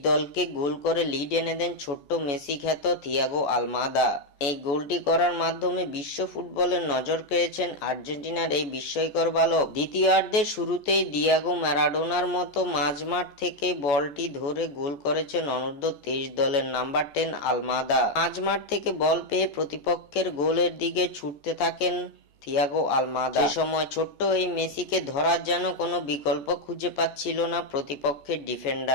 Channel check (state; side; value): late; right; 14 ms